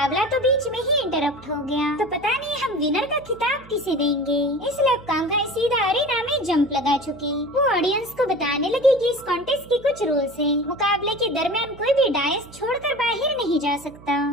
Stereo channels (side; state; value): right; noise; hum, 21 dB below the sound